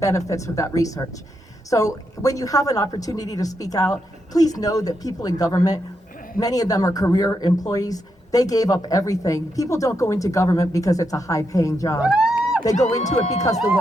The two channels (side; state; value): both; normal; correlation 0.82